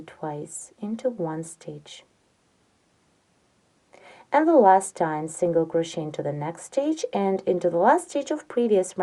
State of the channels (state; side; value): identical; both; correlation 1.00